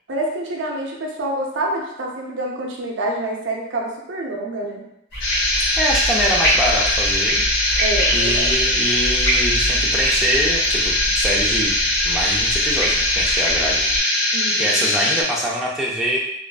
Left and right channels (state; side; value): normal; both; correlation 0.13